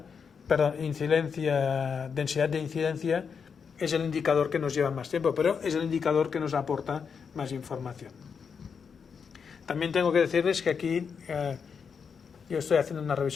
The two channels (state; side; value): quieter; right; 6.2 dB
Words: densidad de incidencia es el indicador que nos lleva más tiempo, pero es el indicador que nos aporta más información. También tengo que decirles que aquí yo estoy haciendo una